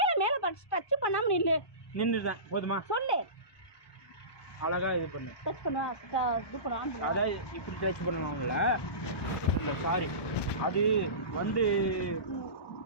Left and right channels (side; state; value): right; late; 1.2 ms